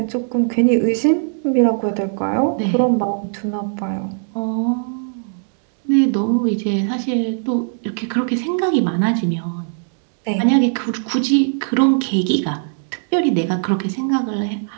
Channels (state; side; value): silent; left; digital silence